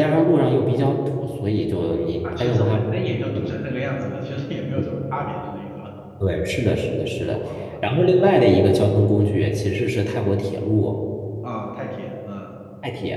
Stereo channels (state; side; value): identical; both; correlation 1.00